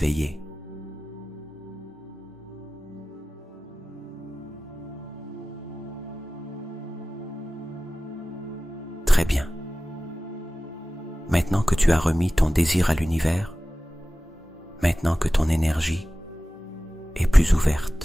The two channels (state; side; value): normal; both; correlation 0.96